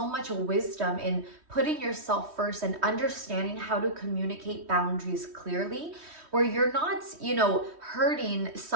much wisdom in putting yourself first and understanding how to communicate boundaries clearly, where you're not, hurting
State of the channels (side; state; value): left; late; 3.1 ms